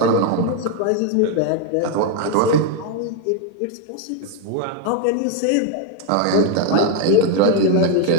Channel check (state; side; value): different; both; correlation 0.01